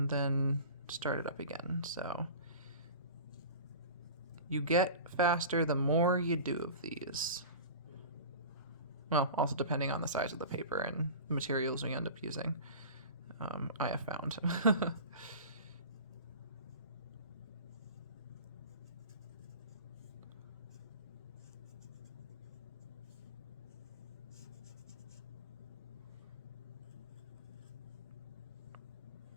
then start it up again. So you get faster the more you do of these. Well, also depending on the size of the paper and the materials we end up using, I have found.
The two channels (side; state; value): both; inverted; correlation -0.35